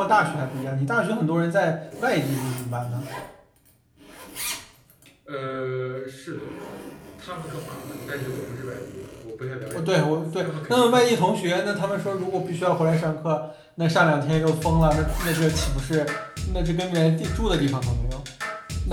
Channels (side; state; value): both; identical; correlation 1.00